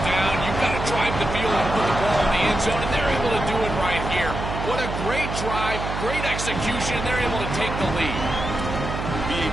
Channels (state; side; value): noise; right; hum, 5 dB below the sound